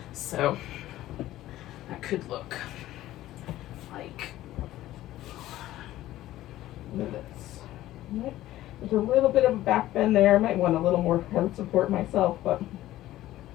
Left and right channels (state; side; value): quieter; right; 14.8 dB